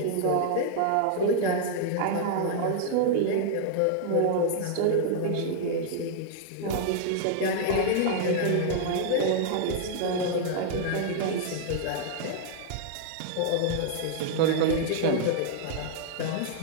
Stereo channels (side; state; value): both; different; correlation -0.01